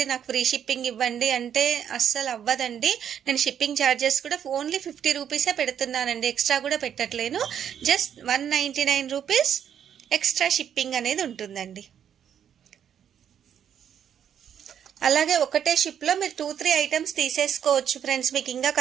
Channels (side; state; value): left; quieter; 9.0 dB